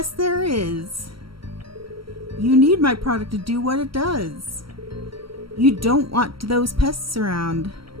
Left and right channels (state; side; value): late; left; 0.74 ms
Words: there is. You need my product to do what it does. You don't want those pests around.